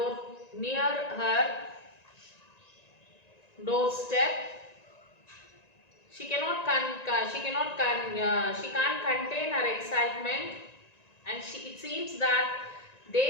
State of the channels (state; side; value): late; right; 1.9 ms